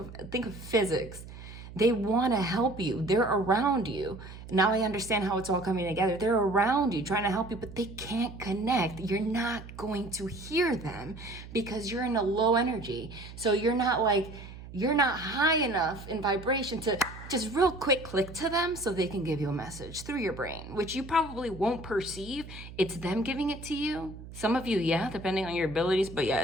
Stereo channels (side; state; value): right; noise; hum, 14 dB below the sound